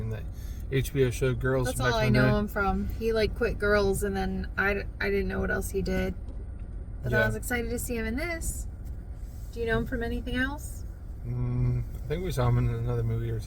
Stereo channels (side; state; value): both; identical; correlation 1.00